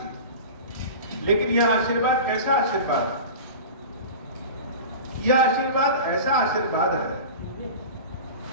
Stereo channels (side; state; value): both; inverted; correlation -0.32